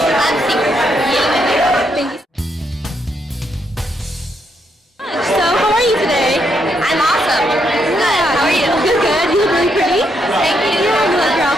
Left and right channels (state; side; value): normal; both; correlation 0.78